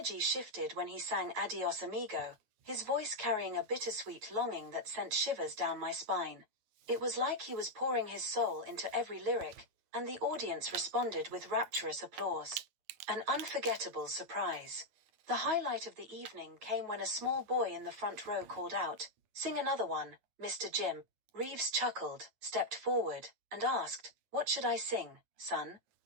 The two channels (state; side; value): late; left; 9.3 ms